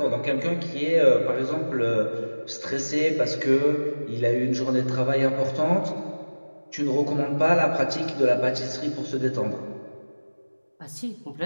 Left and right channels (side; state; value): both; inverted; correlation -1.00